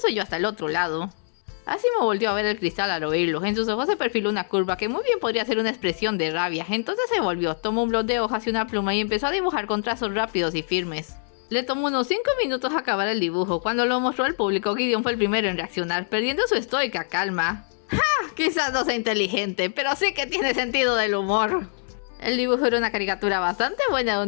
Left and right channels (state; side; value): silent; right; 62 dB below the other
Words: se oyó hasta el otro lado. Asimo volvió a ver el cristal al oírlo. En sus ojos se perfiló una curva que muy bien podría ser una expresión de rabia. Entonces se volvió, tomó un bloc de hojas y una pluma y empezó a dibujar con trazos rápidos y firmes. Le tomó unos 5 minutos acabar el dibujo. Cuando lo mostró al público, Gideon fue el primero en reaccionar, perdiendo su estoica calma. ¡Ja! Quizás no sea inteligente, pero sí que tiene sentido del humor. El dibujo era una caricatura bastante buena